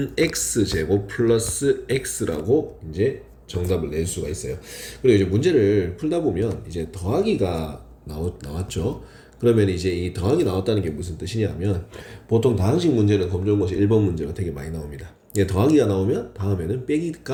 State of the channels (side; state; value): both; identical; correlation 1.00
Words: 플러스 x라고 이제 정답을 낼 수가 있어요. 그리고 이제 문제를 풀다 보면 이제 더하기가 나왔죠. 그러면 이제 이 더하기 나왔다는 게 무슨 뜻이냐면 보통 다항식 문제는 검정고시 1번 문제가 되게 많이 나옵니다. 예, 더하기가 나오면 다음에는